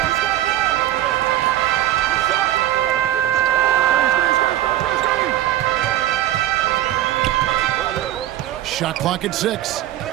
Shot clock at 6.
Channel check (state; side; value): quieter; left; 13.7 dB